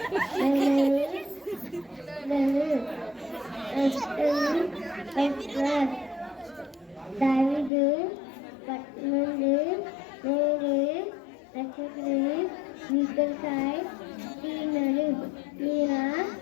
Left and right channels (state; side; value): drops out; right; at 7.7 s